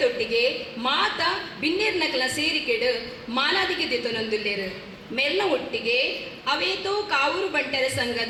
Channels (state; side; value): identical; both; correlation 1.00